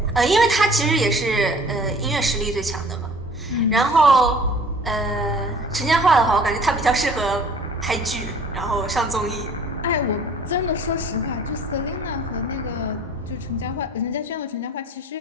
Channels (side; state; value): both; normal; correlation 0.50